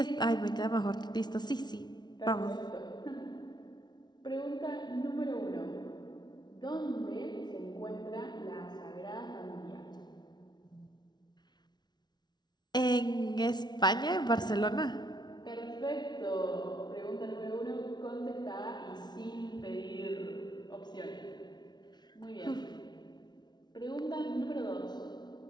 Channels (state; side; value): late; right; 0.20 ms